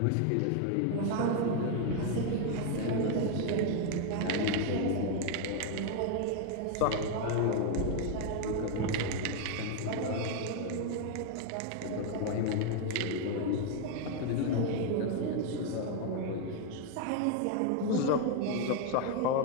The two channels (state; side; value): different; both; correlation 0.01